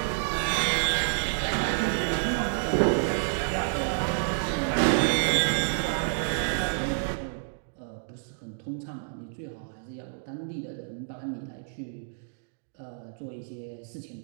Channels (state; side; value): silent; left; digital silence